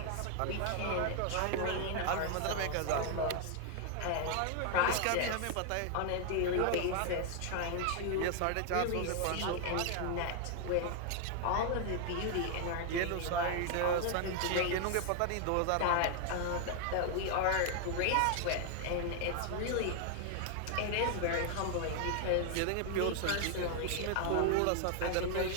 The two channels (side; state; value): both; different; correlation 0.00